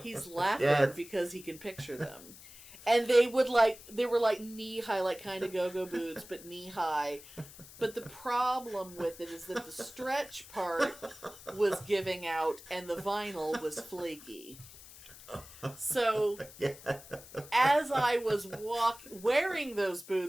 laughing because he can picture them. And they were like knee high, like kind of go-go boots, but knee high. But the problem with it is that the stretch part was giving out and the vinyl was flaky. So, as I was wearing those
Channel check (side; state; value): left; noise; hiss, 18 dB below the sound